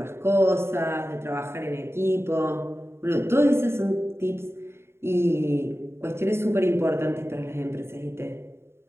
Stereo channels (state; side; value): late; left; 0.12 ms